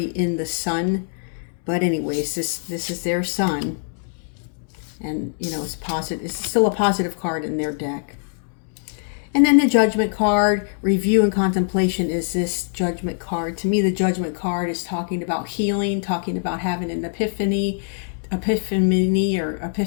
in the sun, but anyways, this is their sun, and you know, it's positive. It's still a positive card in their deck. And then the Judgment card, review and contemplation, is this Judgment card. To me, the Judgment card is talking about healing, talking about having an epiphany,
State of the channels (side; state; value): right; silent; digital silence